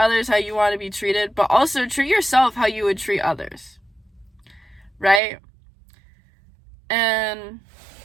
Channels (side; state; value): left; drops out; at 5.2 s